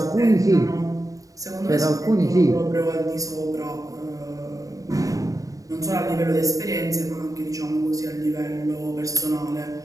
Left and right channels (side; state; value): left; late; 0.16 ms